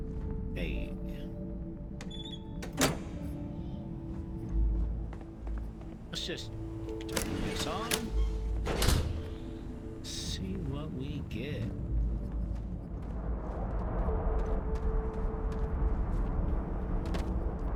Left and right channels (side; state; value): both; identical; correlation 1.00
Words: Hey. Let's just turn this on. See what we get.